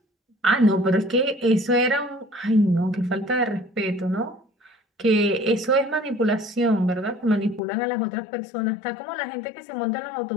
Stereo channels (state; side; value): drops out; right; at 7.6 s